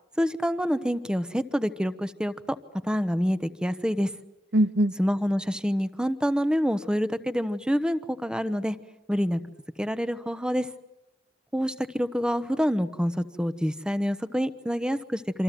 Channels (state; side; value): normal; both; correlation 0.94